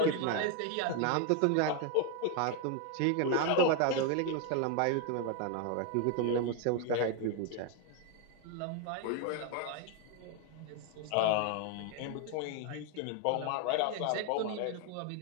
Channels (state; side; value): different; both; correlation 0.01